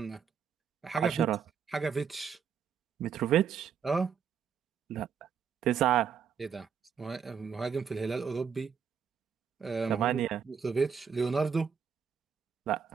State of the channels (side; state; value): left; quieter; 7.0 dB